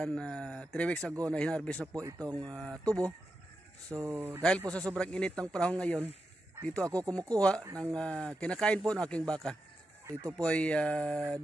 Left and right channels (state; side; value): normal; both; correlation 0.88